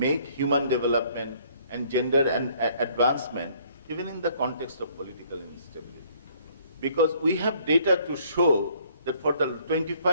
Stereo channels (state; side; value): inverted; both; correlation -0.61